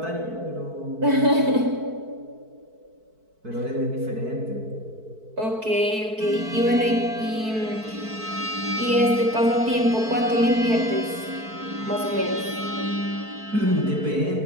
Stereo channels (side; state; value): left; late; 4.6 ms